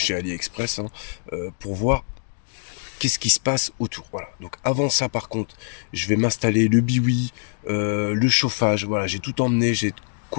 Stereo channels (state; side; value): silent; right; digital silence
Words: AliExpress, hein, pour voir qu'est-ce qui se passe autour. Voilà, donc avant ça par contre, je vais m'installer le biwi, le chauffage, voilà, j'ai tout emmené, j'ai de